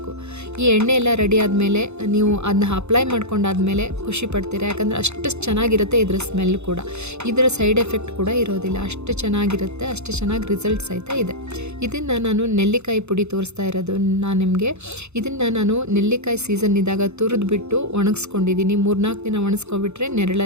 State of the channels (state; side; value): late; left; 0.81 ms